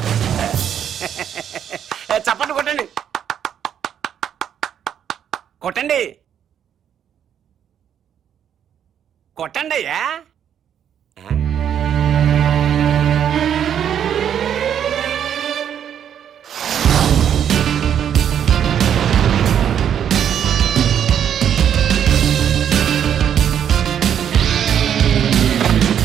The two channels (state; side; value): quieter; left; 9.1 dB